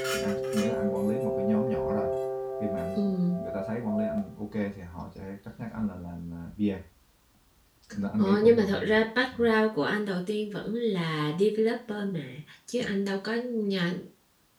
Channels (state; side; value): identical; both; correlation 1.00